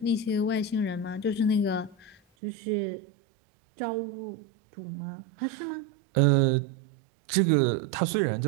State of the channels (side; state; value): left; drops out; at 2.2 s